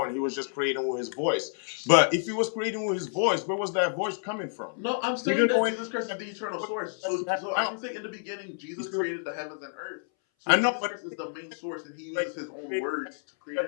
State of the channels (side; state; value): right; silent; 58 dB below the other